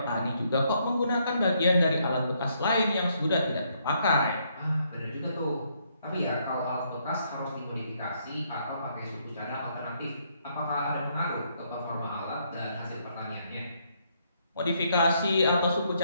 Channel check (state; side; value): inverted; both; correlation -0.72